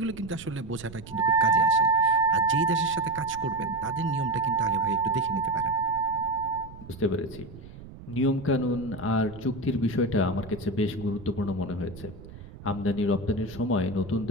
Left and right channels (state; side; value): noise; right; rumble, 16 dB below the sound